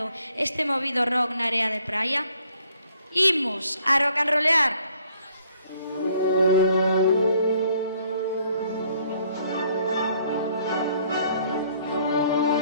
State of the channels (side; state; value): both; inverted; correlation -0.65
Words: este movido rock na area de praia? Imos a rock and rollear!